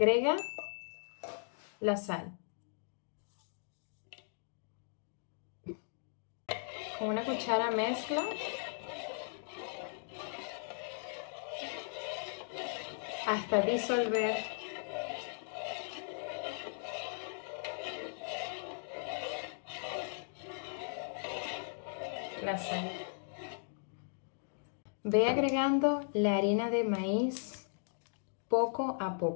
la sal. Con una cuchara mezcla hasta disolver la sal. Ve agregando la harina de maíz poco a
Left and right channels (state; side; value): silent; right; digital silence